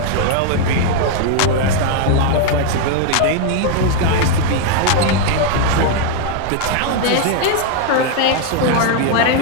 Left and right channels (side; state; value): both; different; correlation 0.00